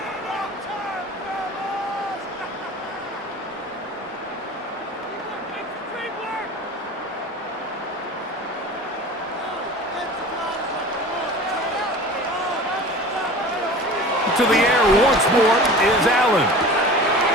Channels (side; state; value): both; normal; correlation 0.38